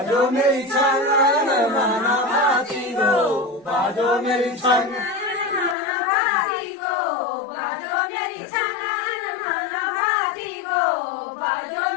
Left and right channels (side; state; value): right; drops out; at 5.8 s